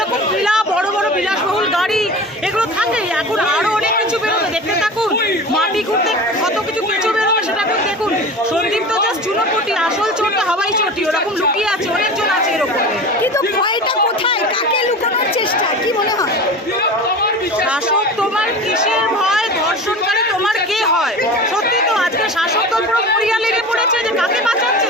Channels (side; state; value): both; normal; correlation 0.33